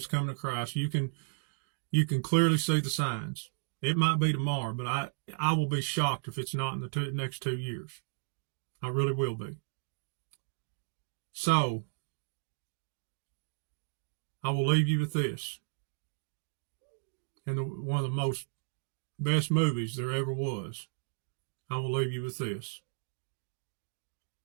coming to Christ. You can clearly see the signs. It might be tomorrow, but I will be shocked if it's not in the next 2 years. I really will be. So, I will leave you with this. And one of the most best movies there ever was. I will leave you with this.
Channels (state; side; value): silent; left; digital silence